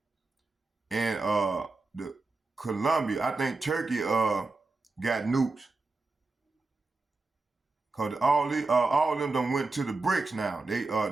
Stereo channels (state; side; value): quieter; left; 3.5 dB